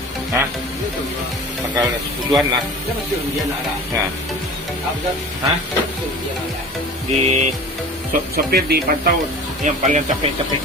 Hah? Tanggal 10-an lah. Ya. Hah? Di sopir dipantau yang paling capek-capek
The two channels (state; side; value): normal; both; correlation 0.38